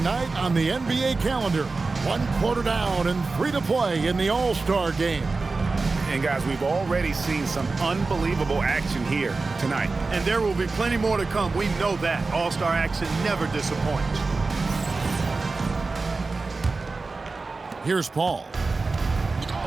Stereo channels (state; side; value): quieter; left; 3.8 dB